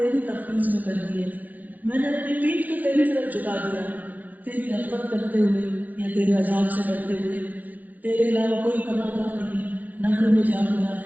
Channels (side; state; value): left; late; 0.083 ms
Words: تفویض میں کر دیے. میں نے اپنی پیٹھ کو تیری طرف جھکا دیا تیری رغبت کرتے ہوئے یا تیرے عذاب سے ڈرتے ہوئے. تیرے علاوہ کوئی پناہ نہیں, نہ کوئی میں جا ہوا ہے.